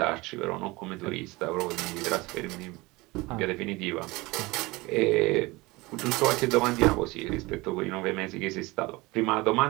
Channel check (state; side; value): quieter; left; 22.4 dB